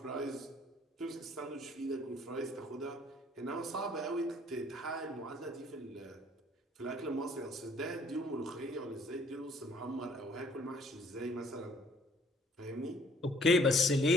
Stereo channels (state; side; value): normal; both; correlation 0.60